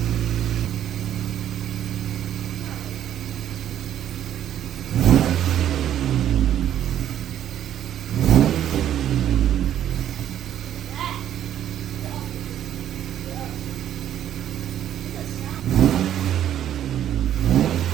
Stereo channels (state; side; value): quieter; left; 10.8 dB